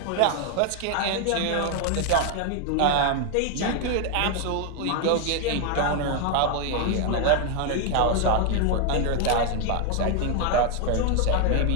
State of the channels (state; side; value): different; both; correlation 0.01